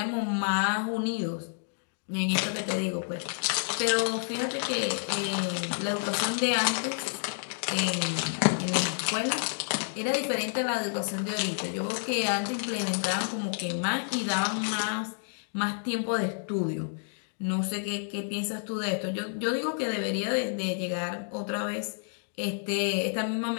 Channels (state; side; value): silent; right; digital silence